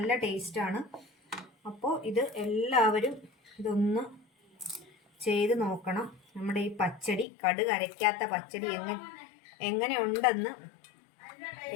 ടേസ്റ്റാണ്. അപ്പോൾ ഇത് എല്ലാവരും ഇതൊന്ന് ചെയ്ത് നോക്കണം. നമ്മുടെ ഈ പച്ചടി, കടുക് അരയ്ക്കാത്ത പച്ചടി എങ്ങനെ ഉണ്ടെന്ന്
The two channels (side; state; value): right; drops out; at 7.2 s